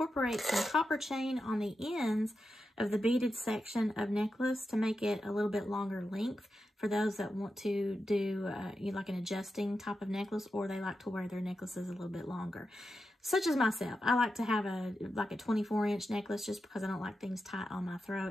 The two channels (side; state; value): both; normal; correlation 0.89